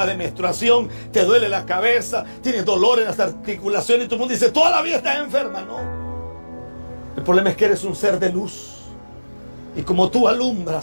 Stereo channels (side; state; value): both; inverted; correlation -1.00